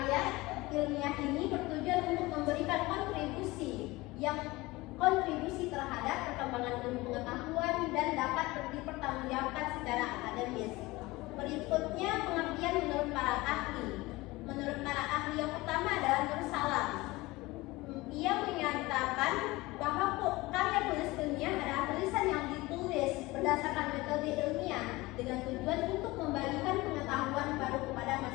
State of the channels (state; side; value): quieter; right; 20.9 dB